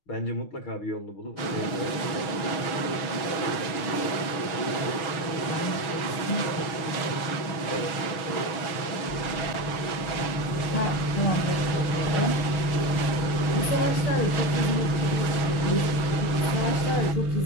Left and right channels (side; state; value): right; late; 6.2 ms